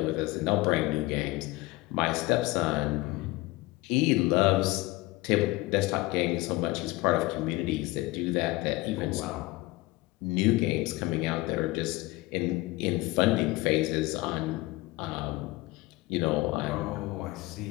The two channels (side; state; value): right; quieter; 20.4 dB